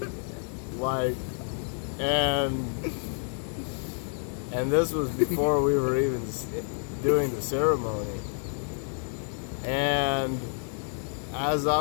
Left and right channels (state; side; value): silent; right; 59 dB below the other